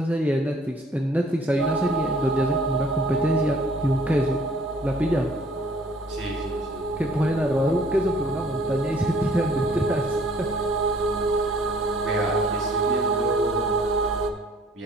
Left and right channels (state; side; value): normal; both; correlation 0.57